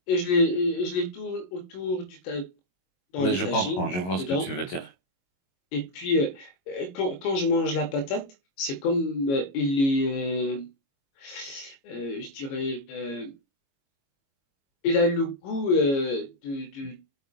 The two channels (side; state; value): right; late; 22 ms